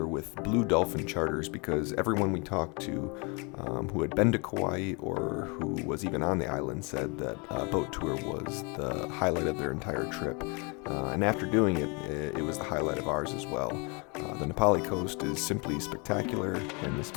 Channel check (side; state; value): right; quieter; 31.4 dB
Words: with Blue Dolphin Charters because everyone we talked to who had been to Kauai or who was even on the island said that a boat tour was the highlight of their entire trip. And after doing it, it was the highlight of ours as well. The Napali Coast is simply spectacular, and this